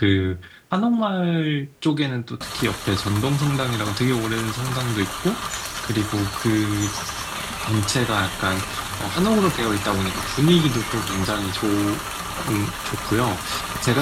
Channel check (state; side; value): identical; both; correlation 1.00